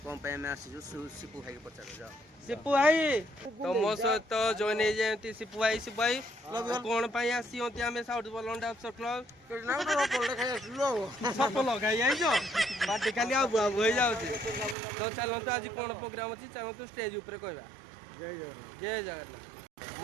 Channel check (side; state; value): left; drops out; at 14.8 s